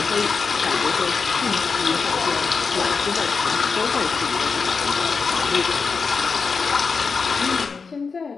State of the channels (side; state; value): right; quieter; 5.0 dB